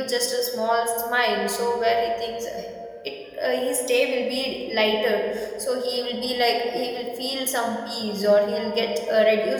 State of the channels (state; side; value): identical; both; correlation 1.00